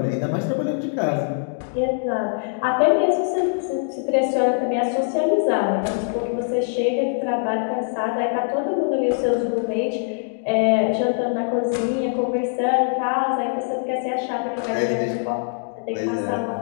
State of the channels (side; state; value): right; silent; 64 dB below the other